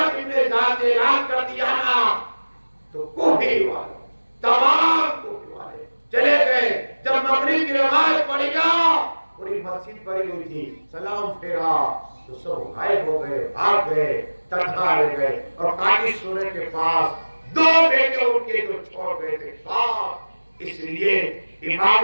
زیاد نے اعلان کر دیا نا تو کوفی والے تمام کوفی والے چلے گئے. جب مغرب کی نماز پڑھی نا پوری مسجد بھری ہوئی تھی، سلام پھیرا تو سب غائب ہو گئے، بھاگ گئے، تنہا رہ گئے. اور قاضی سورے کے پاس 2 بیٹے ان کے جو چھوڑ گئے تھے پاس، اس لیے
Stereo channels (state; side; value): inverted; both; correlation -1.00